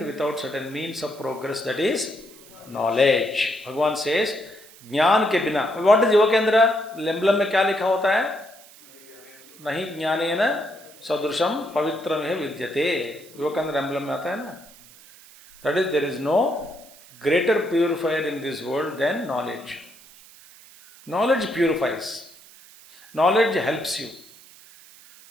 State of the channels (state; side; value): noise; right; hiss, 22 dB below the sound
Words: without certain means of progress, that is knowledge. Bhagavan says ज्ञान के बिना. व्हाट इज योग केंद्र एम्बलम में क्या लिखा होता है? नहीं ज्ञानेन सदृशम पवित्रमेव विद्यते. योग केंद्र एम्बलम में आता है ना. That is there is no greater purifier in this world than knowledge. Knowledge purifies. Knowledge helps you.